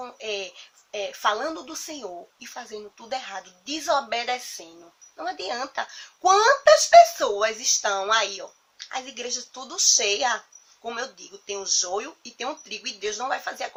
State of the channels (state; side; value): identical; both; correlation 1.00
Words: falando do Senhor e fazendo tudo errado, desobedecendo. Não adianta. Quantas pessoas estão aí, ó? As igrejas tudo cheia. Como eu digo, tem o joio e tem o trigo, e Deus não vai fazer a